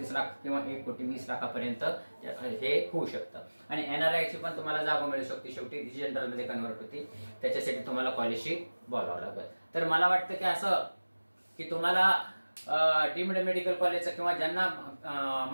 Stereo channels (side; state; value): both; inverted; correlation -1.00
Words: किंवा 1,20,00,000 हे होऊ शकतं. आणि NRI ची पण तुम्हाला जागा मिळू शकते, शेवटी जनरल मध्ये कन्व्हर्ट होती, त्याच्यासाठी तुम्हाला कॉलेजशी बोलावं लागेल. तर मला वाटतं की असं की तुम्हाला डीम्ड मेडिकल कॉलेजचं किंवा ज्यांना